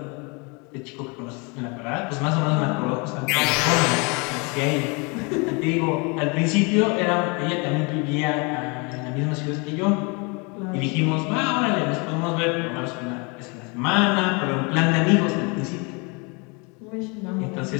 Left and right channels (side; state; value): right; quieter; 30.8 dB